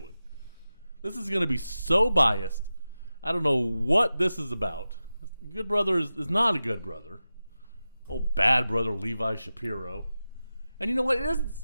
This is going to be so biased. I don't know what this is about. Good Brother is not a Good Brother. Oh, bad brother Levi Shapiro. And you know what? It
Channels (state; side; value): inverted; both; correlation -0.94